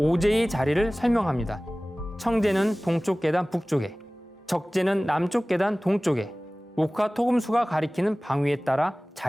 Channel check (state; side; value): normal; both; correlation 0.98